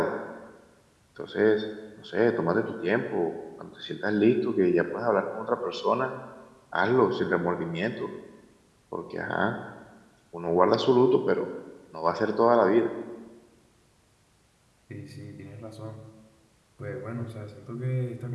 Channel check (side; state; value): both; identical; correlation 1.00